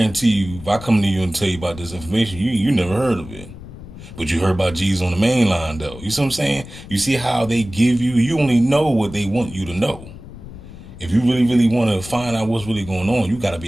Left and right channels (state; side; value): noise; left; rumble, 15 dB below the sound